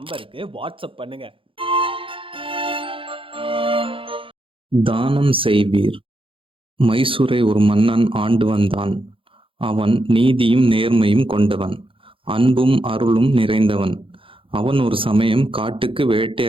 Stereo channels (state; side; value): late; left; 0.26 ms